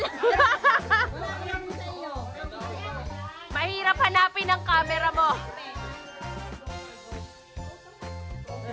Mahirap hanapin ang camera mo.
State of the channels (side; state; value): both; identical; correlation 1.00